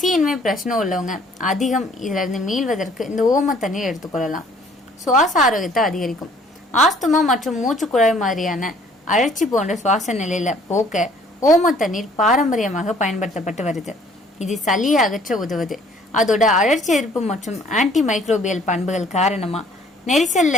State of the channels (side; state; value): both; normal; correlation 0.58